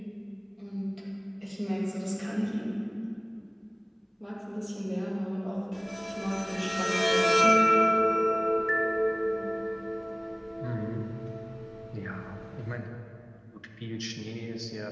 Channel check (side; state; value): both; identical; correlation 1.00